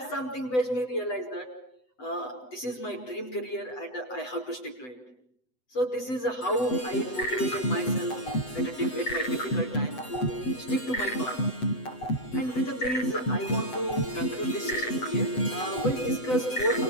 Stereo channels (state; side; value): late; right; 7.9 ms